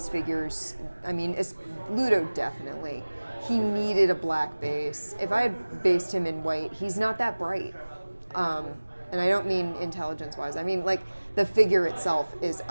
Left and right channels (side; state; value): both; inverted; correlation -1.00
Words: figures, I mean, Ludo definitely. He needed a black base. If I had based him in white, he's not that bright. And I don't mean intelligence-wise. I mean, like, the figure itself is